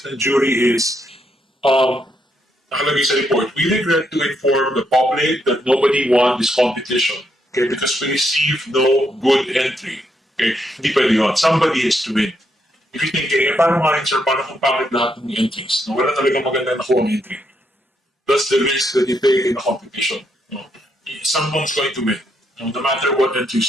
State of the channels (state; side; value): normal; both; correlation 0.77